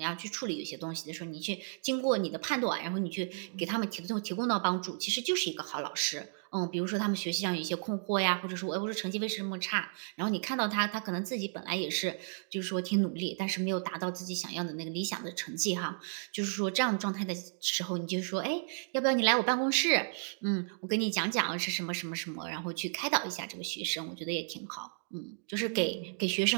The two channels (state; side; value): silent; left; digital silence